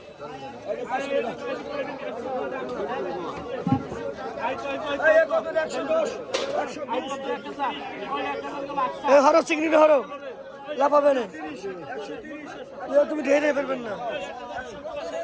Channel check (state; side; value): identical; both; correlation 1.00